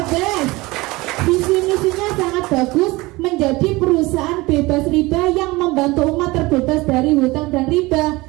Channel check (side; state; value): left; quieter; 21.6 dB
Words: BES. Visi misinya sangat bagus, menjadi perusahaan bebas riba yang membantu umat terbebas dari hutang dan riba.